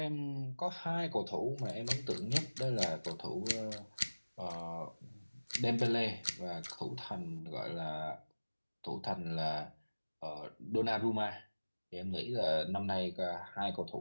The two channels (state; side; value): inverted; both; correlation -1.00